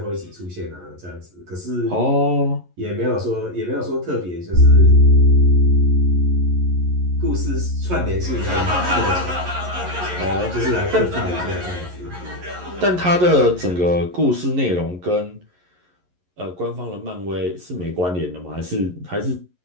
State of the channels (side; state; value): left; late; 11 ms